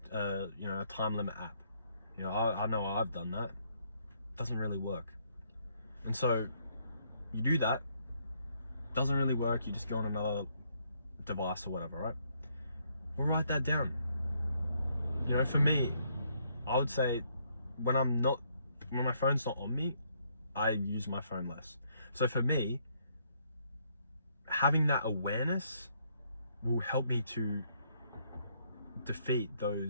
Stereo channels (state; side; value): inverted; both; correlation -0.71